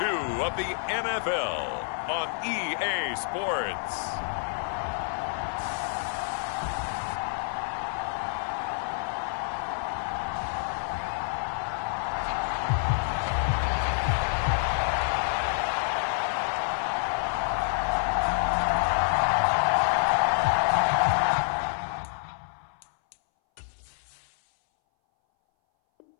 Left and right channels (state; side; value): silent; right; 59 dB below the other